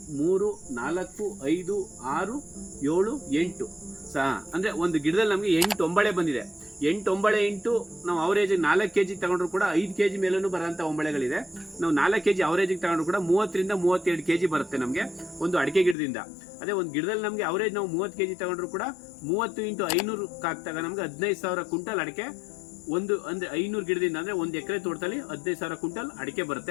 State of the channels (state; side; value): drops out; right; at 16.0 s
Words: 3 4 5 6 7 8 ಅಂದ್ರೆ ಒಂದು ಗಿಡದಲ್ಲಿ ನಮಗೆ 8 ಒಂಬಳೆ ಬಂದಿದೆ. 8 ಒಂಬಳೆ ಇಂಟು ನಾವು ಅವರೇಜ್ 4 ಕೆಜಿ ತಗೊಂಡ್ರು ಕೂಡ 5 ಕೆಜಿ ಮೇಲೂ ಬರೋಂಥ ಒಂಬಳೆಗಳಿದೆ. ನಾವು 4 ಕೆಜಿ ಅವರೇಜಿಗೆ ತಗೊಂಡ್ರು ಕೂಡ 30 ರಿಂದ 32 ಕೆಜಿ ಬರುತ್ತೆ ನಮಗೆ ಒಂದು ಅಡಿಕೆ ಗಿಡದಿಂದ. ಅದೇ ಒಂದು ಗಿಡದಲ್ಲಿ ನಮಗೆ ಅವರೇಜ್ ನಾವು 30 ಕೆಜಿ ತಗೊಂಡ್ರು ಕೂಡ 30 × 500 ಹಾಕ್ತಾಗ ನಮ್ಗೆ 15,000 ಕ್ವಿಂಟಲ್ ಅಡಿಕೆ ಒಂದು ಅಂದ್ರೆ 500 ಗಿಡದಿಂದ ಅಂದ್ರೆ 1 ಎಕರೆ ತೋಟದಲ್ಲಿ 15,000 ಕ್ವಿಂಟಲ್ ಅಡಿಕೆ